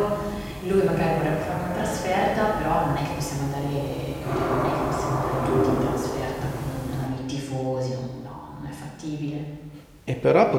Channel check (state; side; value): identical; both; correlation 1.00